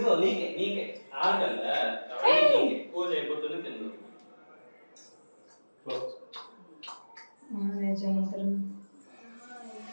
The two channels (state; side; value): inverted; both; correlation -1.00